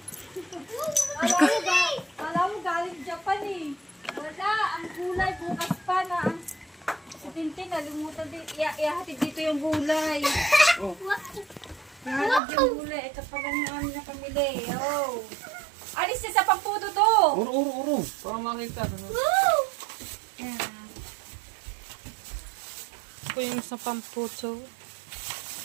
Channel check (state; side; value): drops out; left; at 12.4 s